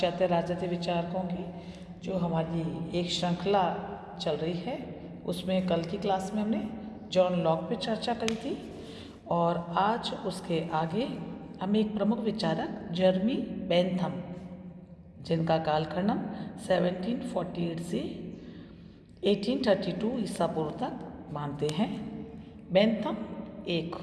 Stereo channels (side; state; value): both; identical; correlation 1.00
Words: राजनीतिक विचारकों की जो हमारी एक श्रृंखला चल रही है, उसमें कल की क्लास में हमने जॉन लॉक पे चर्चा करी थी और आज उसके आगे हम एक प्रमुख विचारक जर्मी बेंथम, जिनका कालखंड 1748 से 1832 ईसा पूर्व तक मानते हैं। बेंथम एक